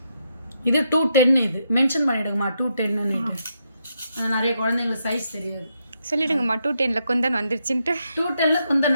இது 210. இது மென்ஷன் பண்ணிவிடுங்கம்மா 210ன்னு. நிறைய குழந்தைங்களுக்கு சைஸ் தெரியாது. சொல்லிடுங்கம்மா 210 குந்தன் வந்துருச்சுன்ட்டு. 210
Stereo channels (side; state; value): both; inverted; correlation -0.80